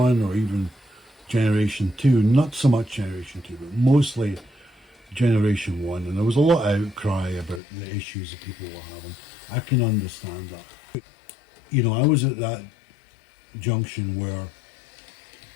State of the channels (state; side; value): drops out; right; at 7.6 s